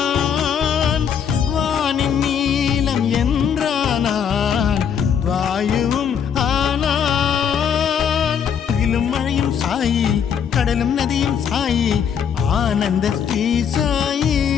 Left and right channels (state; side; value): quieter; right; 7.7 dB